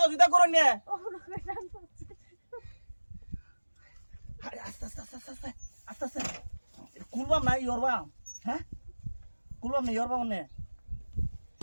করেন নে আরে আস্তে আস্তে কুলবাম না ইয়রবাম হ্যাঁ কুলবাম না ইয়রবাম নে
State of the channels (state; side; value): inverted; both; correlation -1.00